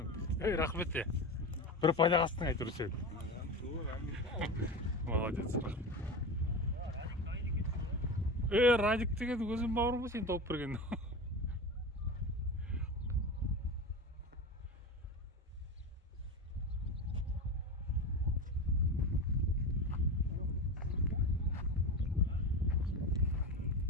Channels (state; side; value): normal; both; correlation 0.24